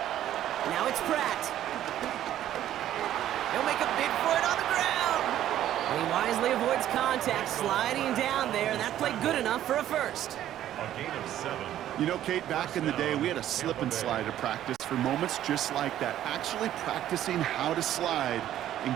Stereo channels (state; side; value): quieter; left; 12.1 dB